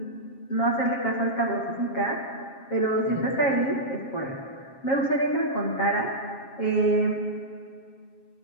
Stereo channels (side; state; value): right; late; 7.4 ms